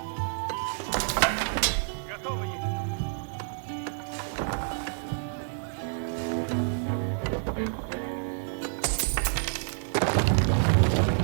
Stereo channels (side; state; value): left; silent; 59 dB below the other